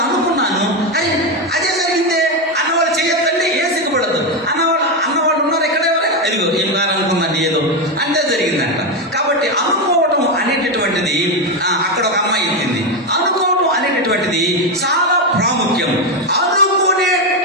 అనుకున్నాను, అరే అదే జరిగిందే అన్నవాళ్ళు చెయ్యొద్దండి, ఏ సిగ్గుపడద్దు. అన్నవాళ్ళు ఉన్నారు ఎక్కడ, అదిగో ఏం కాదనుకున్నాను ఏదో అంటే జరిగిందంట. కాబట్టి అనుకోవటం అనేటటువంటిది, అక్కడ ఒక అమ్మాయి చెప్పింది, అనుకోవటం అనేటటువంటిది చాలా ప్రాముఖ్యం.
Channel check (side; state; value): both; normal; correlation 0.09